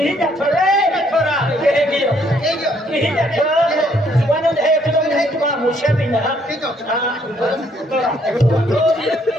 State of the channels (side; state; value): both; normal; correlation 0.68